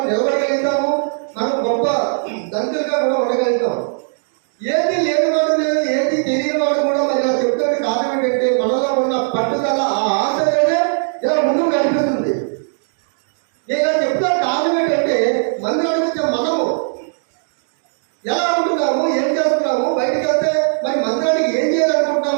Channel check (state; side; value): silent; left; digital silence